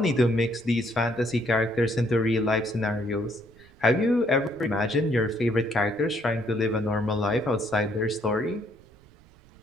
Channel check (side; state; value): right; noise; rumble, 27 dB below the sound